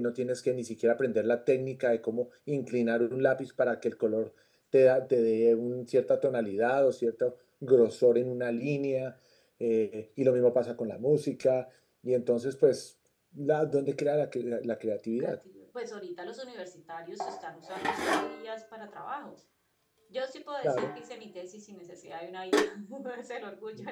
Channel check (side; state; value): both; identical; correlation 1.00